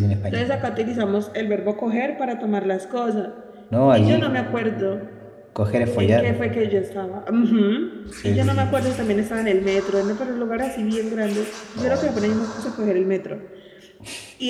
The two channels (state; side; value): identical; both; correlation 1.00